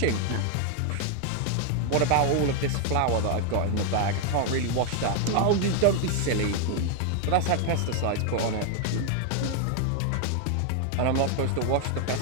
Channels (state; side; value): different; both; correlation 0.01